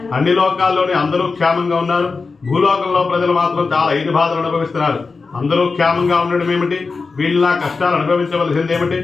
అన్ని లోకాల్లోని అందరూ క్షేమంగా ఉన్నారు. భూలోకంలో ప్రజలు మాత్రం చాలా 5 బాధలు అనుభవిస్తున్నారు. అందరూ క్షేమంగా ఉండడం ఏమిటి, వీళ్ళ కష్టాలు అనుభవించవలసిందేమిటి,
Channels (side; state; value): right; quieter; 4.4 dB